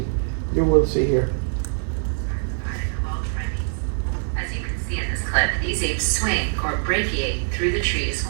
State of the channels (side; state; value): left; silent; digital silence